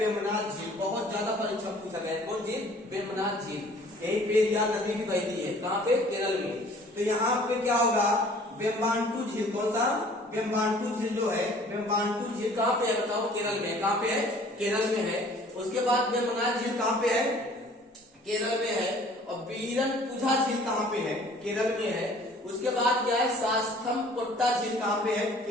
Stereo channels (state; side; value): normal; both; correlation 0.52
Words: झील। बहुत ज्यादा परीक्षा में पूछा गया है। कौन झील? वेम्बनाड झील। यही पेरियार नदी भी बहती है। कहाँ पे? केरल में। तो यहाँ पे क्या होगा? वेम्बांटू झील। कौन सा? वेम्बांटू झील जो है, वेम्बांटू झील कहाँ पे है बताओ? केरल में। कहाँ पे है? केरल में है। उसके बाद वेम्बनाड झील कहाँ पे है? केरल में है। और बीरनपुझा झील कहाँ पे है? केरल में है। उसके बाद क्या है? सास्थमकोट्टा झील कहाँ पे है?